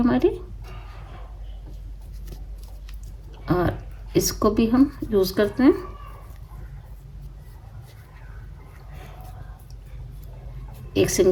हमारी और इसको भी हम यूज करते हैं। एक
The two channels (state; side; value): identical; both; correlation 1.00